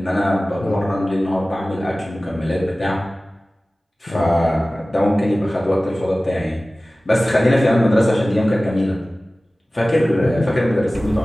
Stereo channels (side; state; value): both; normal; correlation 0.97